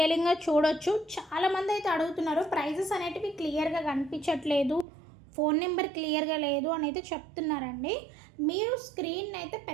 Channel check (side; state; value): left; drops out; at 4.9 s